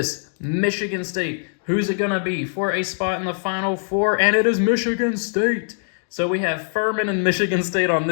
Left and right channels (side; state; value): right; silent; 64 dB below the other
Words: Michigan State. Who's it going to be for a spot in the Final Four? And it is Michigan State. So we have Furman and Michigan State on